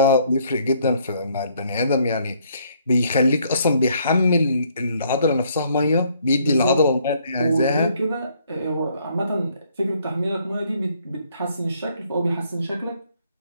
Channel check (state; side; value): inverted; both; correlation -0.66